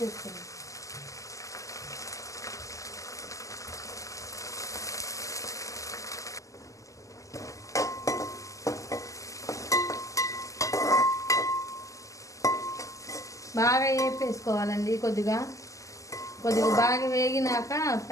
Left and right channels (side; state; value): right; late; 0.16 ms